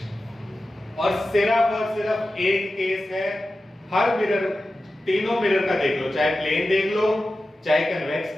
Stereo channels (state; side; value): normal; both; correlation 0.93